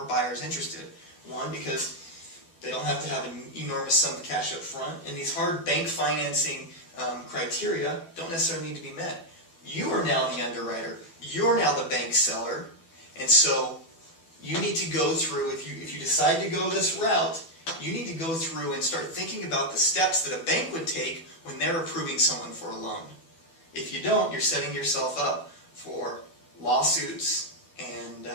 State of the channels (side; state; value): right; late; 12 ms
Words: buyers interested. One, because they don't have to have an enormous sum of cash up front, and these hard bank financing criteria don't necessarily need to be met. You are now the underwriter. You're now the bank seller, and so you need to go through, if you decide to go this route, you need to go through and start thinking about the steps that a bank would take when they're approving someone for a loan. If you don't, you're setting yourself up for lawsuits, and